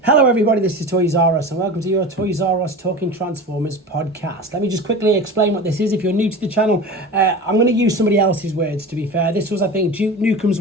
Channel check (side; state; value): both; normal; correlation 0.32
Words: Hello everybody, this is Toys R Us and welcome to your Toys R Us Talking Transformers podcast. Let me just quickly explain what this is. If you're new to the channel, I'm going to use somebody else's words, to be fair. This was, I think, Duke Nukem's